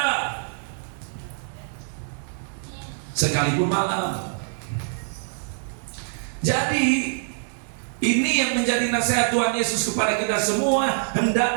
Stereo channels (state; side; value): silent; left; digital silence